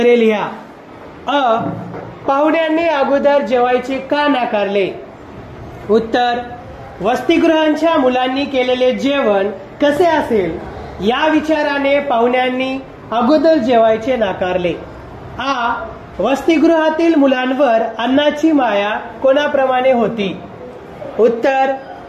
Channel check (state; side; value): identical; both; correlation 1.00